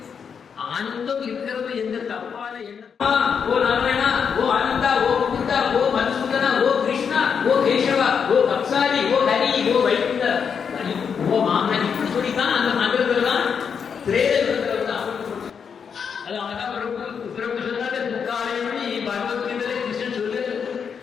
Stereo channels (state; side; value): quieter; right; 6.7 dB